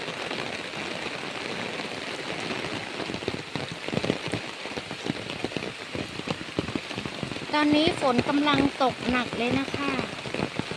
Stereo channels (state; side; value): identical; both; correlation 1.00